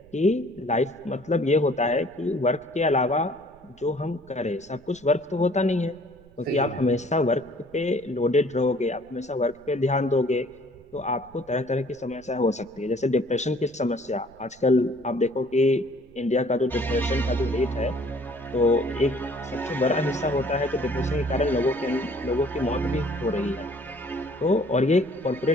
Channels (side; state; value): right; noise; rumble, 27 dB below the sound